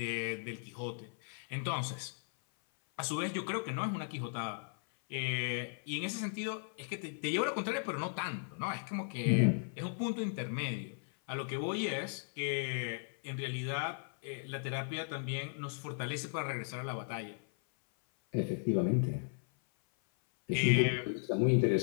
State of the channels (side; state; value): right; silent; 54 dB below the other